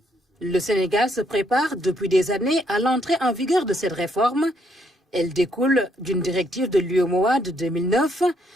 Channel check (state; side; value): normal; both; correlation 0.72